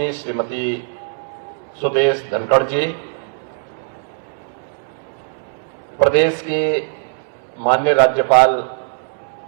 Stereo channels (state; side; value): silent; left; digital silence